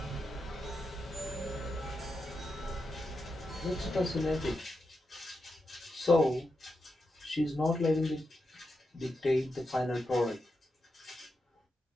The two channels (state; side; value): normal; both; correlation 0.87